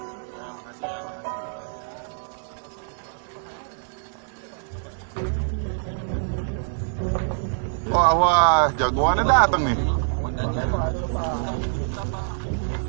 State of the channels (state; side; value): silent; left; digital silence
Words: Wah, jagoannya datang nih.